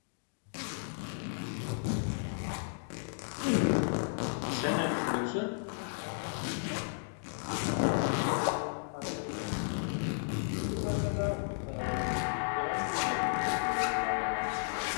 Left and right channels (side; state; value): right; silent; digital silence